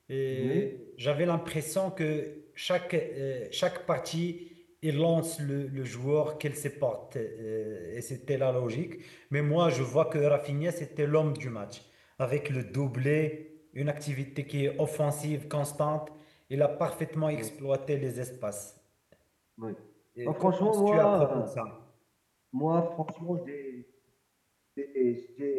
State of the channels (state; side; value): identical; both; correlation 1.00